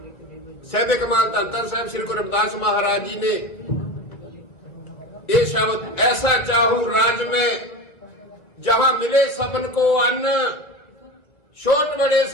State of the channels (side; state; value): right; late; 1.8 ms